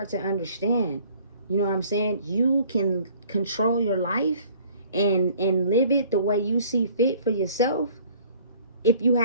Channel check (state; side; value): inverted; both; correlation -0.54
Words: to understand. You know what I'm saying? You can control your life and live it the way you see fit for yourself if you